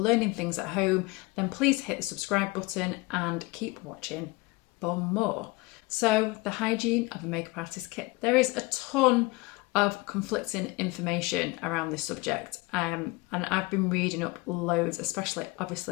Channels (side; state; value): right; quieter; 23.3 dB